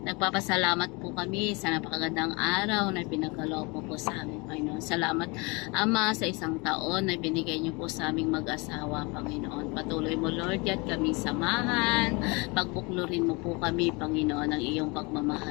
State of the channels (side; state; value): right; quieter; 28.0 dB